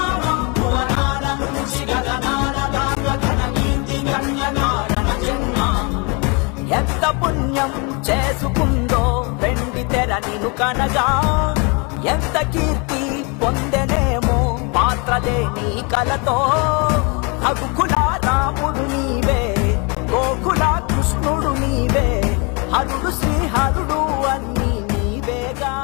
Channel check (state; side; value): quieter; right; 31.4 dB